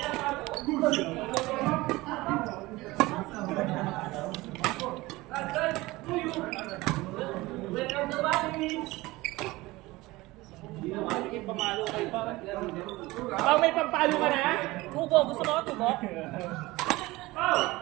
Pamalo kayo pa. May pampalo ka na? Tubo, gusto mo tubo?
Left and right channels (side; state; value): left; quieter; 20.2 dB